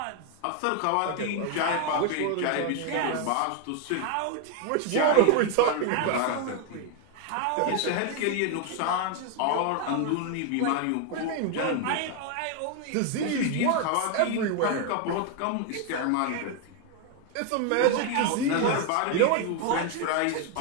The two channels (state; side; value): different; both; correlation 0.01